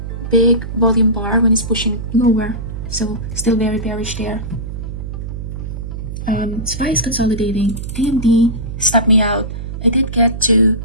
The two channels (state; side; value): noise; right; hum, 7 dB below the sound